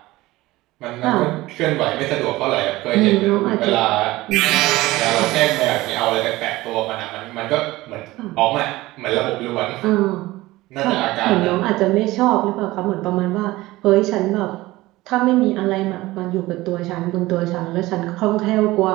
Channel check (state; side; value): quieter; left; 18.7 dB